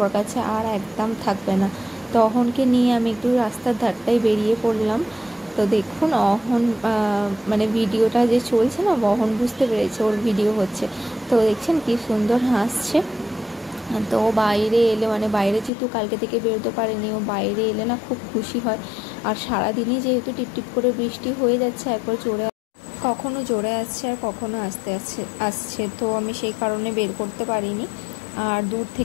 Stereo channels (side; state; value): right; drops out; at 15.7 s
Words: কাছে আর একদম থাকবে না। তো অহনকে নিয়ে আমি একটু রাস্তার ধারটায় বেরিয়ে পড়লাম। তো দেখুন অহন মানে ভিডিওটা যে চলছে না, অহন বুঝতে পেরেছে ওর ভিডিও হচ্ছে। তো দেখছেন কি সুন্দর হাসছে। তো বাইরে এলে, মানে বাইরে যেহেতু কালকে থেকে বেরোতে পারেনি, ও বাইরে এলে না খুব খুশি হয়। আর সারাদিনই যেহেতু টিপটিপ করে বৃষ্টি হয়ে যাচ্ছে, একবার কখনো জোরে আসছে আর কখনো আসছে। তো আমি সেই কারণে বের করতে পারিনি। আর দূর